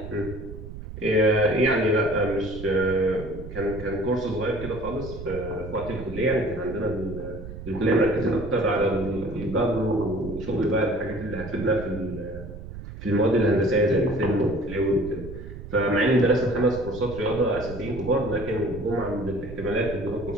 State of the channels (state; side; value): noise; right; rumble, 11 dB below the sound